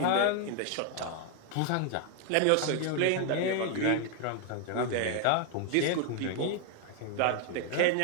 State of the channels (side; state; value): both; different; correlation 0.00